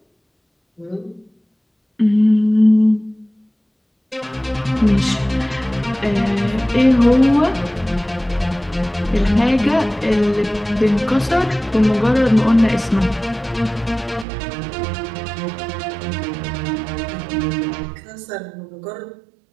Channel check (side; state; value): left; drops out; at 14.2 s